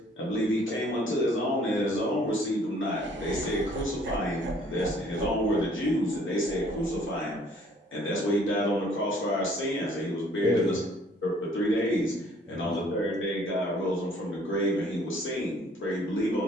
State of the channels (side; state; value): both; normal; correlation 0.59